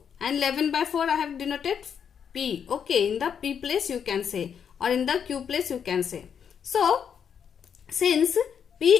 and 11 by 4 I have denoted P. Okay. In the P place you can say, or in the Q place you can say. So since P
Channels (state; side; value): quieter; right; 7.6 dB